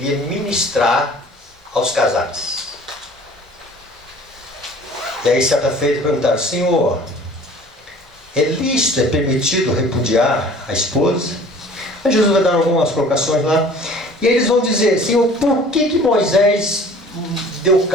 ministrar aos casais? E aí certa feita perguntaram: Senhor, é lícito, é permitido repudiar a esposa? Aí Jesus vai dar algumas colocações lá. E aí eles vão dizer: Senhor, por que Moisés deu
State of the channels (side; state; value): both; normal; correlation 0.48